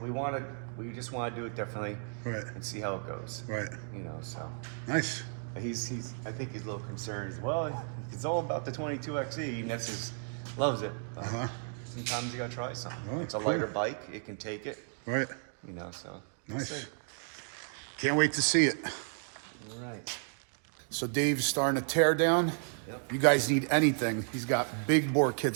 just want to do it differently, right? And see how it goes, right? You know, so nice. He's I think he's a little concerned as well. It's all about the 22XE, and that's loves it. Sometimes you gotta try something. Oh, it's a lighter bike; it can take it, right? You know, so nice. Can't wait to see it. All right. So Dave's starting to tear down. Yep. You guys need anything, he's got big bore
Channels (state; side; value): silent; left; 55 dB below the other